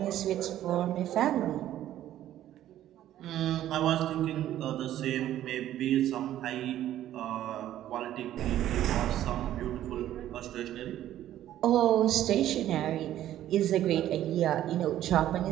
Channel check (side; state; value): left; quieter; 12.5 dB